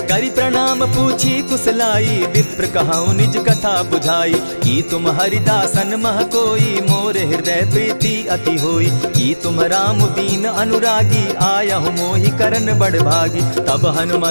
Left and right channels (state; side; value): inverted; both; correlation -1.00